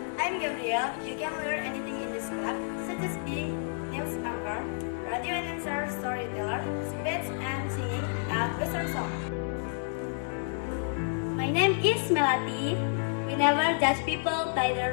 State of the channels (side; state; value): right; silent; digital silence